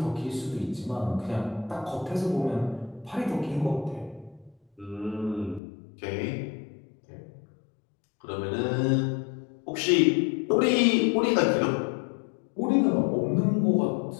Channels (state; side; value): drops out; right; at 5.6 s